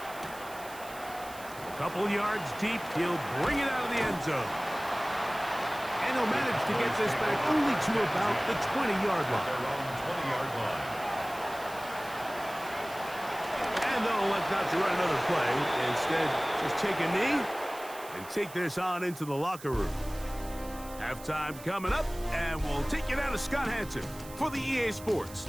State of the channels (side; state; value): right; noise; hiss, 17 dB below the sound